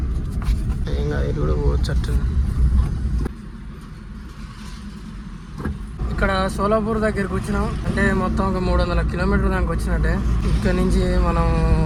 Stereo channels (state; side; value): identical; both; correlation 1.00